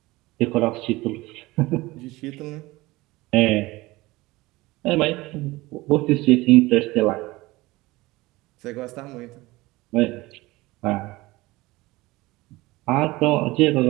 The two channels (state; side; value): quieter; left; 20.3 dB